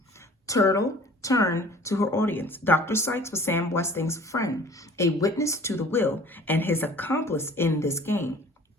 Turtle turned to her audience. Dr. Sykes was Sam Westing's friend, a witness to the will, and his accomplice in this game.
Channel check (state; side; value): normal; both; correlation 0.48